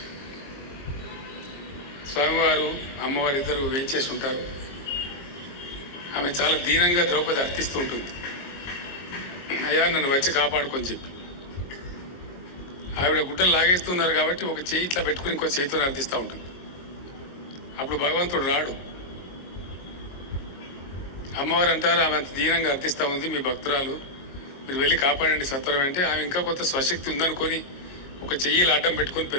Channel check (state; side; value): late; right; 22 ms